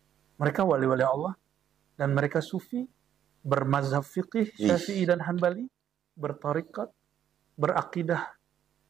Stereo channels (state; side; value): quieter; left; 10.1 dB